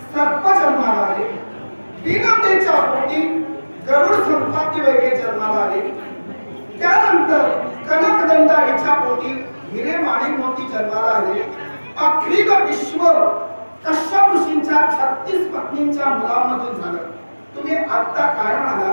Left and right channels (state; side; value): inverted; both; correlation -1.00